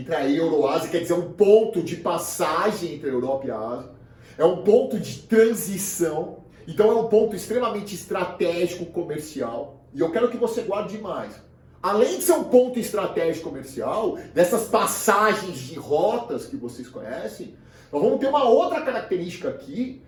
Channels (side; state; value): both; identical; correlation 1.00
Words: a Euroásia, quer dizer, um ponto de passagem entre a Europa e a Ásia. É um ponto de transição. Então é um ponto extremamente estratégico comercial. E eu quero que você guarde mais. Além de ser um ponto estratégico comercial, dessas passagens de rotas que vocês conhecem, nós vamos ter uma outra característica aqui,